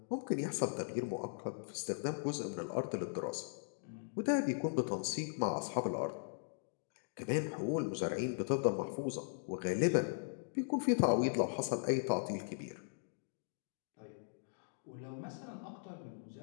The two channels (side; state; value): right; silent; digital silence